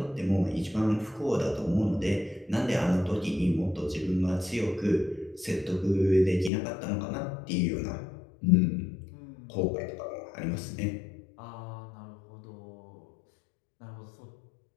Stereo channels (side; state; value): right; drops out; at 6.5 s